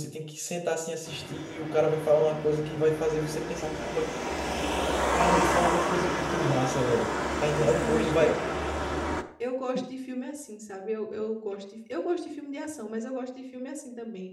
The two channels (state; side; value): identical; both; correlation 1.00